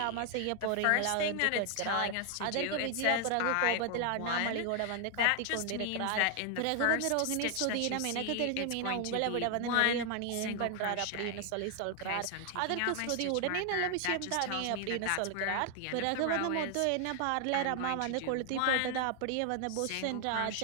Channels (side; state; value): both; different; correlation 0.00